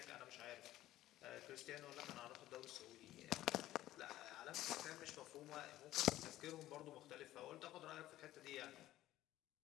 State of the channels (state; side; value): quieter; right; 14.7 dB